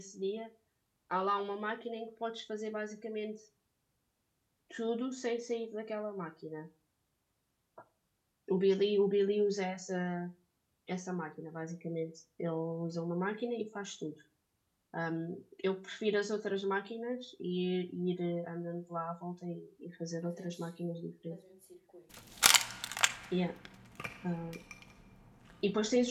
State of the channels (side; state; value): both; identical; correlation 1.00